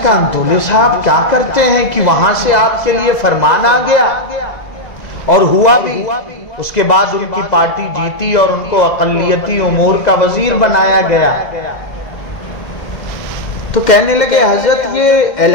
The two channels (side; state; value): right; late; 2.0 ms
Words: کہا انتولے صاحب کیا کرتے ہیں کہ وہاں سے آپ کے لیے فرمان آ گیا، اور ہوا بھی، اس کے بعد ان کی پارٹی جیتی اور ان کو اقلیتی امور کا وزیر بنایا گیا۔ تو کہنے لگے حضرت یہ